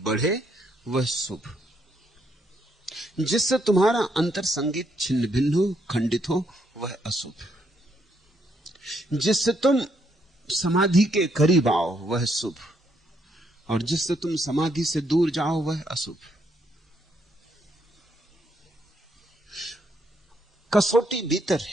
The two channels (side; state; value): both; normal; correlation 0.74